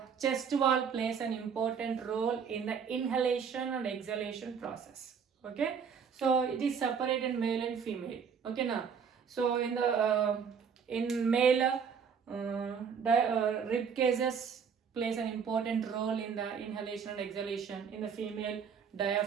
chest wall plays an important role in the inhalation and exhalation process. Okay, so it is separated male and female. Okay now, so in the in male rib cages plays an important role in the inhalation and exhalation. In the female,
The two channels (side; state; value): left; quieter; 6.6 dB